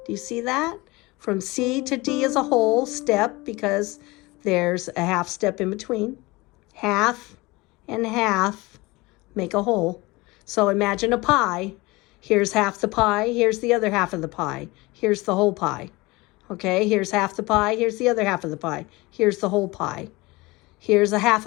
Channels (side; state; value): right; quieter; 22.6 dB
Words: Do you see that? From C to D is a whole step because there's a half step in between. Half and half make a whole. So imagine a pie. Here's half the pie. Here's the other half of the pie. Here's the whole pie. Okay, here's half the pie. Here's the other half of the pie. Here's the whole pie. Here's a half